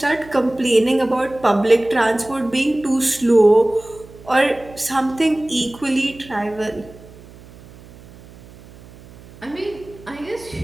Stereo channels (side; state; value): right; noise; hum, 21 dB below the sound